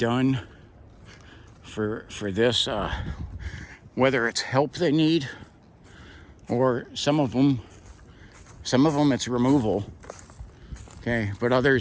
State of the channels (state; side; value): identical; both; correlation 1.00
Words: for this, whether it's help they need, or some of them it's removal. Okay, but